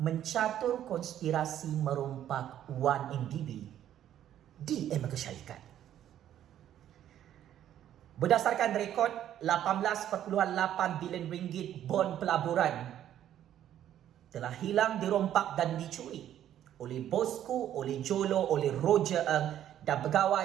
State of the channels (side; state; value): left; quieter; 11.2 dB